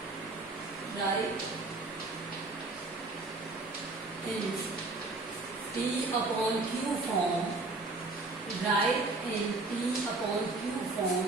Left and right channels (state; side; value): quieter; left; 3.3 dB